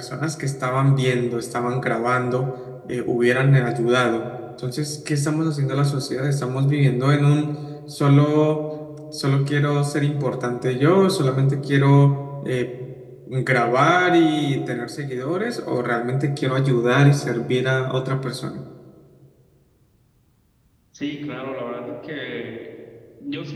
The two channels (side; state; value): both; identical; correlation 1.00